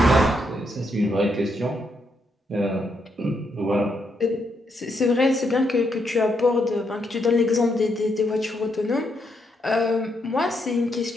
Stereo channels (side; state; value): both; normal; correlation 0.78